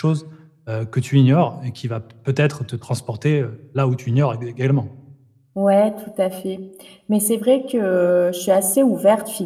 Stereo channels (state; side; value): identical; both; correlation 1.00